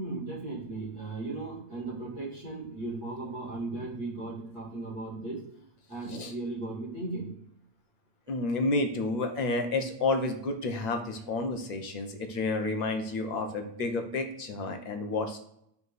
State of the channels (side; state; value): left; late; 8.1 ms